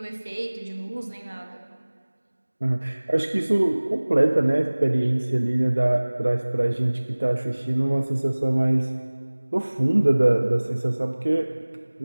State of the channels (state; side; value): inverted; both; correlation -1.00